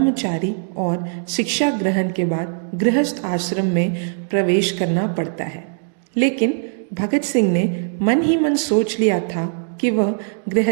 और शिक्षा ग्रहण के बाद गृहस्थ आश्रम में प्रवेश करना पड़ता है। लेकिन भगत सिंह ने मन ही मन सोच लिया था कि वह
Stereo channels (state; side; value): silent; left; digital silence